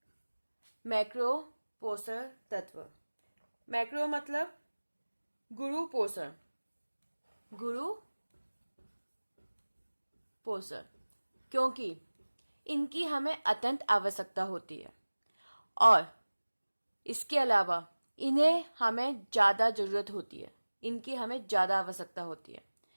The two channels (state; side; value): inverted; both; correlation -1.00